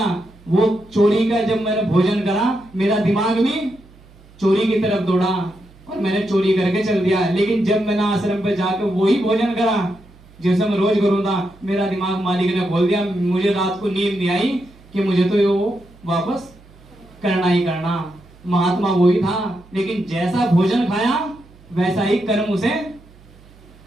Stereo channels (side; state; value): right; noise; hum, 25 dB below the sound